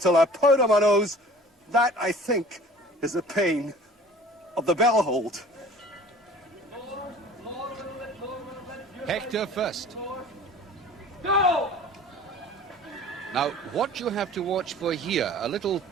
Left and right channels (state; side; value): normal; both; correlation 0.45